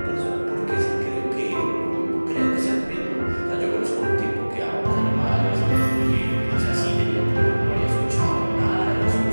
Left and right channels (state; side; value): inverted; both; correlation -1.00